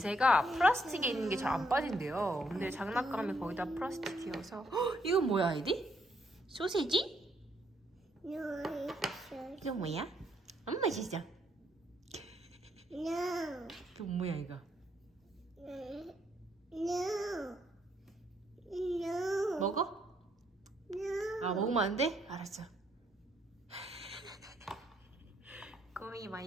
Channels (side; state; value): both; normal; correlation 0.72